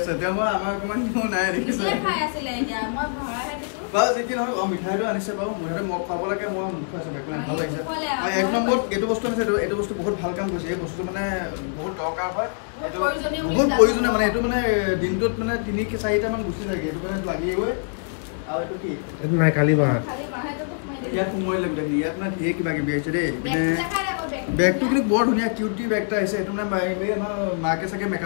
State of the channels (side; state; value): right; silent; 62 dB below the other